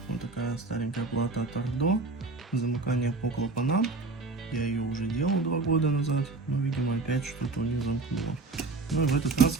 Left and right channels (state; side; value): quieter; left; 3.4 dB